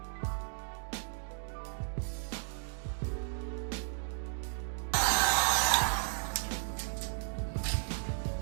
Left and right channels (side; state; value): left; silent; digital silence